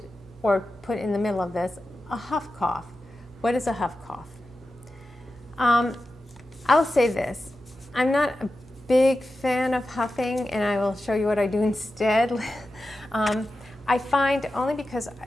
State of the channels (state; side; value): normal; both; correlation 0.92